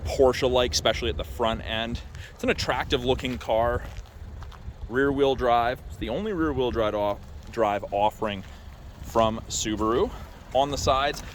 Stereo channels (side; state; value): both; identical; correlation 1.00